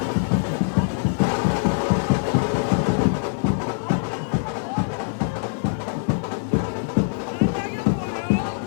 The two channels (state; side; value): silent; right; digital silence